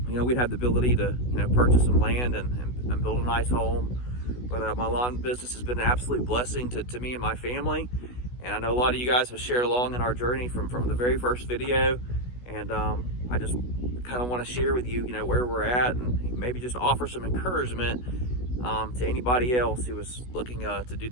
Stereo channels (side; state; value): right; late; 16 ms